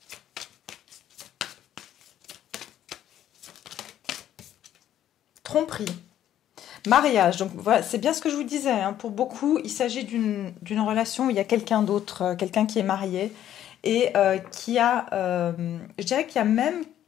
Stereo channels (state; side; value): quieter; right; 11.4 dB